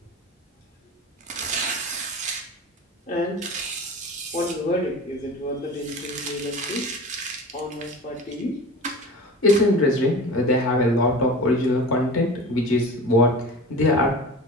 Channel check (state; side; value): normal; both; correlation 0.35